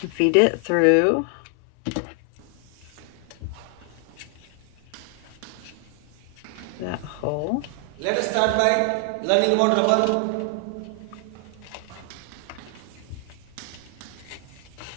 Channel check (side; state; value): both; different; correlation 0.00